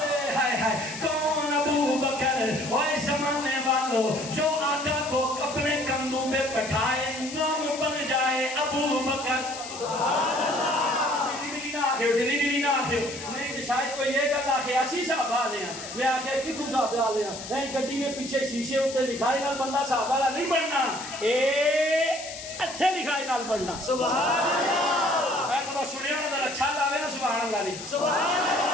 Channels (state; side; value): noise; left; hiss, 11 dB below the sound